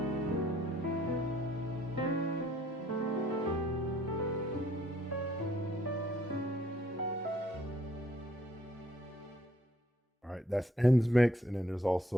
All right, that's ends mix, and then there's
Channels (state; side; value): normal; both; correlation 0.64